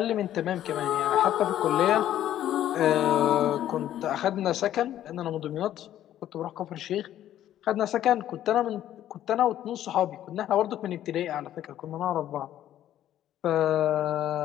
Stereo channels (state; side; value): quieter; right; 12.0 dB